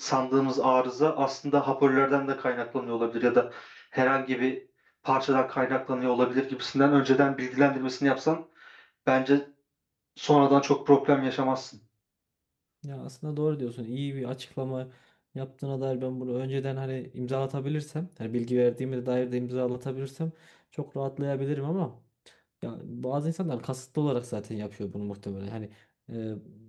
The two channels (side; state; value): both; identical; correlation 1.00